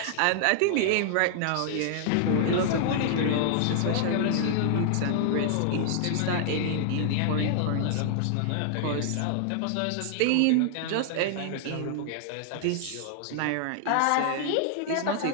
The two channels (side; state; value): both; different; correlation 0.00